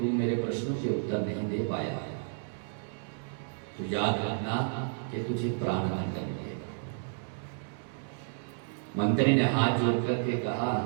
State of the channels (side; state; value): left; silent; digital silence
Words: मेरे प्रश्नों के उत्तर नहीं दे पाया तो याद रखना कि तुझे प्राणदंड मिलेगा। मंत्री ने हाथ जोड़ करके कहा